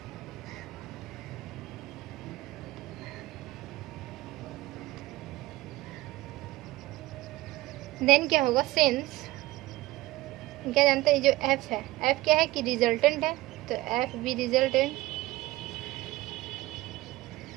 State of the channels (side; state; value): left; quieter; 18.4 dB